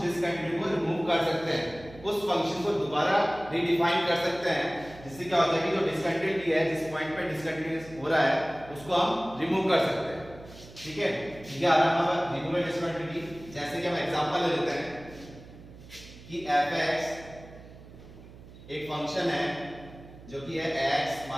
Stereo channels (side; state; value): right; noise; hum, 18 dB below the sound